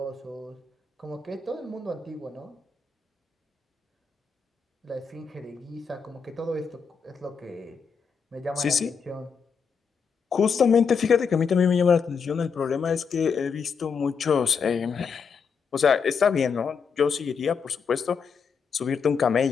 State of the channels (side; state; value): right; quieter; 5.9 dB